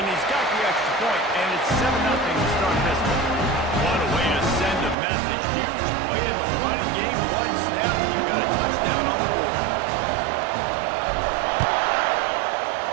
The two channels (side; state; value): left; drops out; at 5.0 s